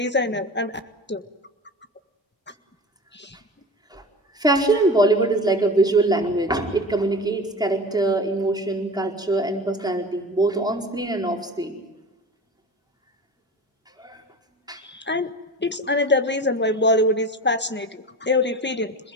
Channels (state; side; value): normal; both; correlation 0.33